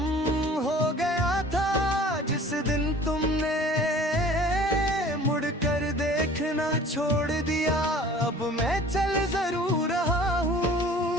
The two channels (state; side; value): normal; both; correlation 0.47